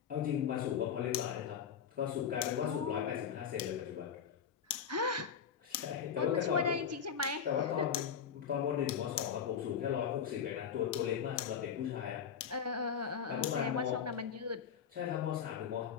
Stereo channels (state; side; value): quieter; right; 7.5 dB